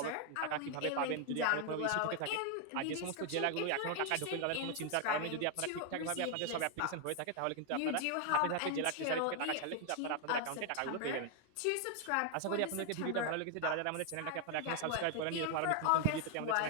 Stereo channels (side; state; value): both; different; correlation 0.00